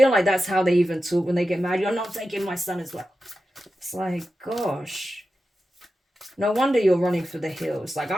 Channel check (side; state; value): both; normal; correlation 0.92